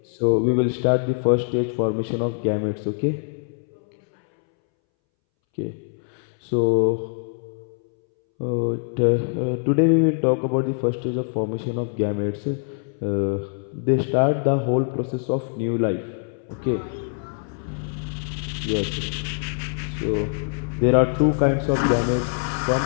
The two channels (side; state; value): right; silent; 63 dB below the other